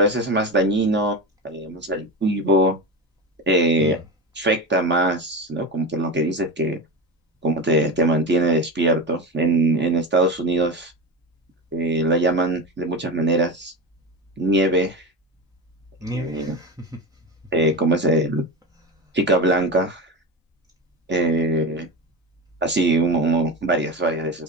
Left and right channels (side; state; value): both; normal; correlation 0.22